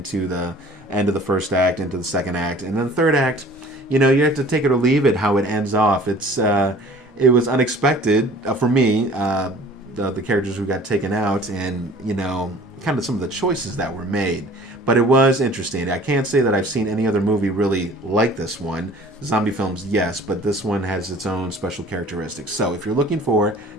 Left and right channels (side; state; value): both; normal; correlation 0.48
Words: the end of the first act, into the second act. And then the third act, you have to take it or leave it how it ends off. It was unexpected for me, the characters who got taken out and, kind of some of the choices that were made. But it was interesting. I can't say that I've seen any other movie really like this one. Zombie films, yes, but this one has its own special characteristics. So if you're looking for